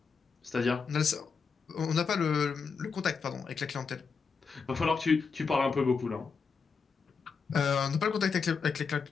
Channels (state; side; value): quieter; right; 5.4 dB